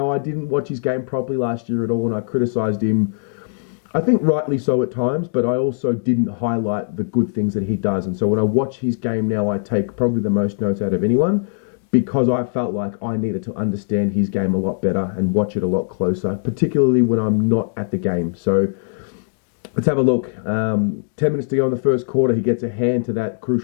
didn't watch his game properly last year at all, and I criticised him, I think rightly so at times, but I also didn't highlight the good things that he does. And so when I watch his game now, I take probably the most notes out of anyone, because I felt like I needed to understand his game a lot better and watch it a lot closer, particularly when I'm not at the game. So let's have a look. 10 minutes to go in the first quarter. He gets a hand to that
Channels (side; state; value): right; silent; digital silence